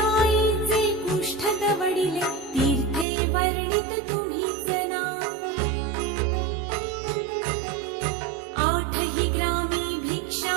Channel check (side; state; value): left; drops out; at 3.1 s